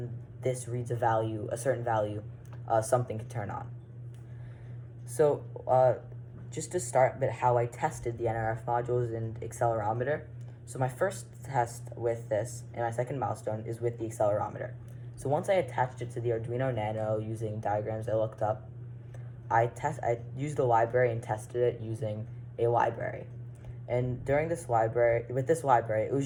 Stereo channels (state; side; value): identical; both; correlation 1.00